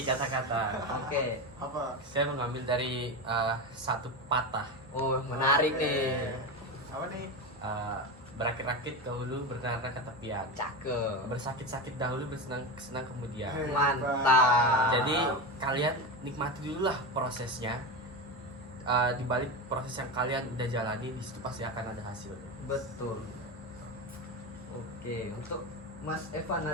kata-kata. Oke. Apa? Saya mengambil dari satu patah. Oh, menarik nih. Apa nih? Berakit-rakit dahulu, bernara ke tepian. Cakep. Bersakit-sakit dahulu, bersenang-senang kemudian. Mantap. Jadi kalian nikmati dulu lah prosesnya. Di balik proses yang kalian udah jalani, di situ pasti akan ada hasilnya. Betul. Oke, untuk Mas Evan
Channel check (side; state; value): both; normal; correlation 0.19